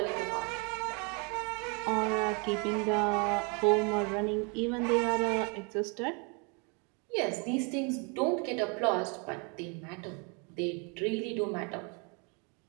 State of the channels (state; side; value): quieter; left; 33.9 dB